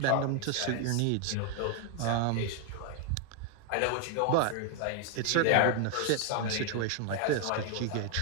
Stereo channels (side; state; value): both; different; correlation 0.00